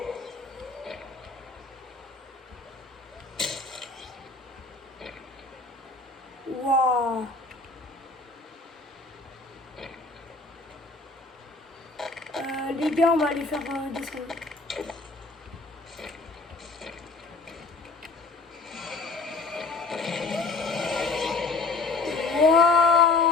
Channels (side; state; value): right; quieter; 3.7 dB